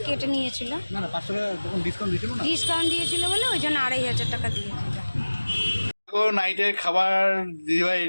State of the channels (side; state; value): both; inverted; correlation -1.00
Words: কেটে নিয়েছিল, না 500 টাকা ডিসকাউন্ট দিয়েছিল বলে ওই জন্য 2,500 টাকা দিয়েছিল। দেখো নাইটের খাবার দিদিভাই